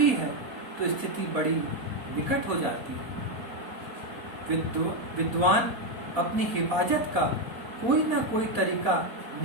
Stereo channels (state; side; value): late; left; 4.1 ms